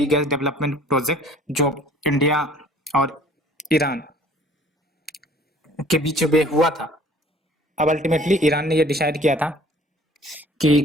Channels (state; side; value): normal; both; correlation 0.53